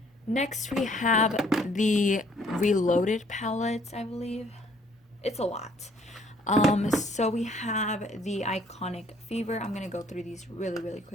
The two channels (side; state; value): both; normal; correlation 0.62